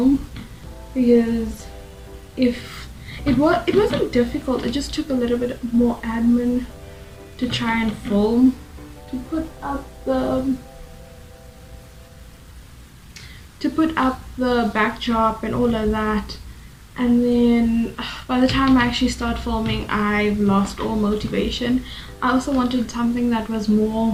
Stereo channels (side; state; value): both; identical; correlation 1.00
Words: because if it wasn't difficult, it just took a little bit more admin to try and film, to put up the backdrop and all of that. And then by the time I actually start filming, I've lost all motivation. I also wanted something that was